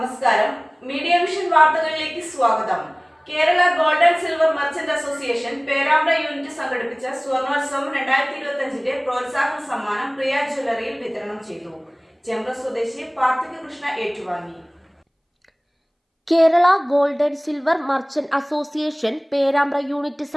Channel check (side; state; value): both; identical; correlation 1.00